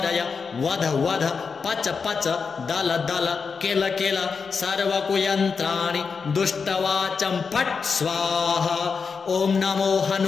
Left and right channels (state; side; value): quieter; right; 5.4 dB